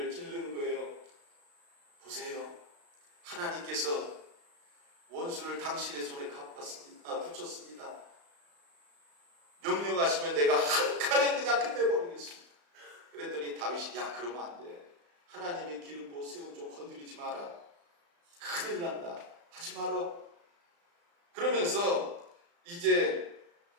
찌르는 거예요. 보세요. 하나님께서 원수를 당신의 손에 붙였습니다. 명령하시면 내가 한 칼에 그냥 끝내버리겠습니다. 그랬더니 다윗이, 야, 그러면 안 돼. 하나님이 기름 부어 세운 좀 건드리지 마라. 큰일 난다. 하지 마라. 그러면서 이제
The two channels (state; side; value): late; left; 35 ms